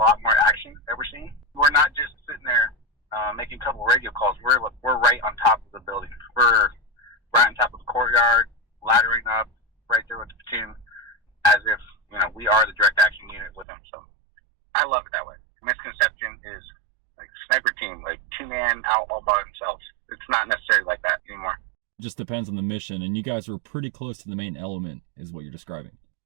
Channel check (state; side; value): drops out; left; at 13.7 s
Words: more action that we're seeing. We're not just sitting there making a couple radio calls. We're right on top of the building. We're right on top of the courtyard, laddering up right there with the platoon, as if we are the direct action unit with them. So I love it that way. Misconception is like sniper team, like 2-man out all by themselves. It's not necessarily like that anymore. It just depends on the mission, and you guys were pretty close to the main element, is what you're describing.